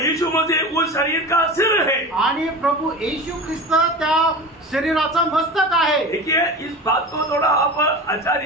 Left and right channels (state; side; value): normal; both; correlation 0.31